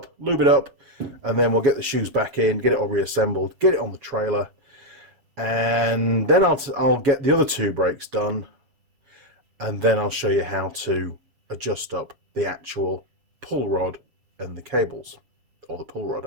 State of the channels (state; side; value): late; left; 7.2 ms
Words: lube it up, and then we'll get the shoes back in, get it all reassembled, get it on the trailer, and then I'll get the other two brakes done, and then I'll show you how to adjust up the actual pull rod and the cables, or the pull rod